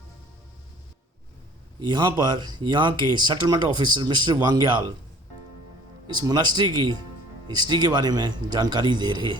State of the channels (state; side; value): normal; both; correlation 0.51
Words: यहाँ पर यहाँ के सेटलमेंट ऑफिसर मिस्टर वांग्याल इस मोनास्ट्री की हिस्ट्री के बारे में जानकारी दे रहे